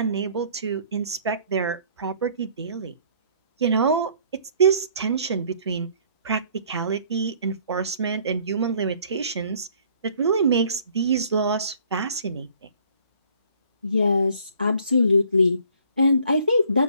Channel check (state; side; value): inverted; both; correlation -0.58